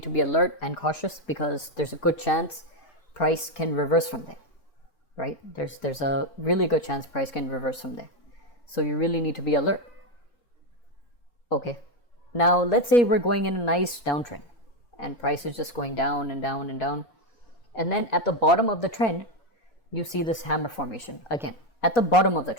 to be alert and cautious, because there's a good chance price can reverse from there, right? There's a really good chance price can reverse from there. So you really need to be alert. Okay. Now let's say we're going in a nice downtrend and price is just going down and down and down. And then at the bottom of the trend, you see this hammer formation again at the bottom of the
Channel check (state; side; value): late; right; 4.3 ms